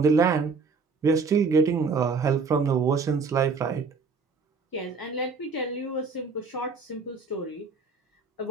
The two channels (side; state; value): left; quieter; 4.6 dB